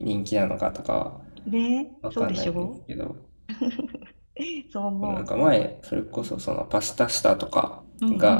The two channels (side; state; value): both; inverted; correlation -1.00